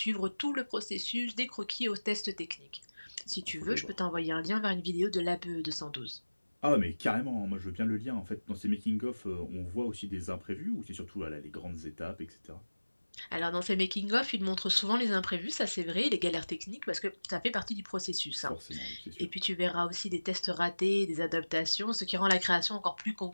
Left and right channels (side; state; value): both; inverted; correlation -1.00